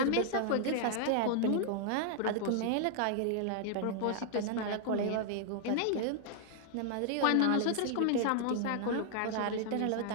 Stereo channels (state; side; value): different; both; correlation 0.00